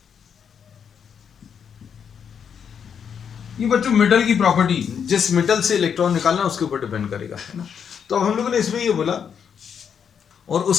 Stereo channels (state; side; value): quieter; right; 7.4 dB